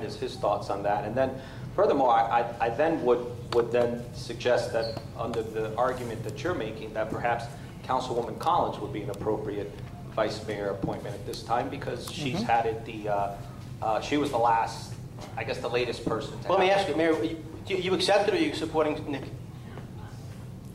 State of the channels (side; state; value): both; identical; correlation 1.00